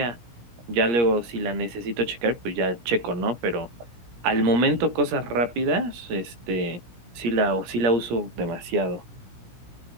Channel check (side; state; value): left; late; 17 ms